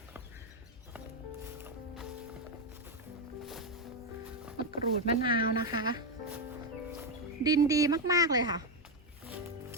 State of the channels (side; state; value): both; normal; correlation 0.06